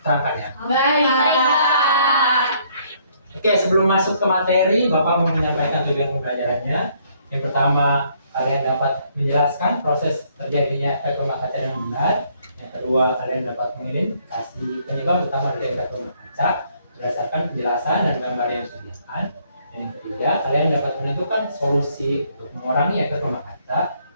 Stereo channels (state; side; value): inverted; both; correlation -0.67